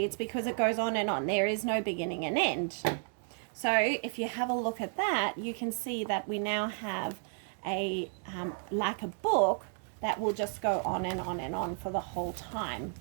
it's because it goes on and on. There is no beginning and end. So if you have a look at that, you can see that we now have a like a book that will just go on and on and on for the whole time.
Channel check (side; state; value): left; silent; 56 dB below the other